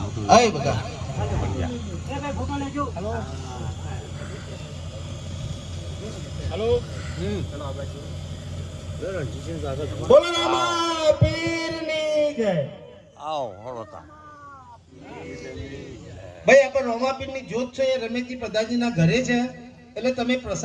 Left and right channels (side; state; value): both; identical; correlation 1.00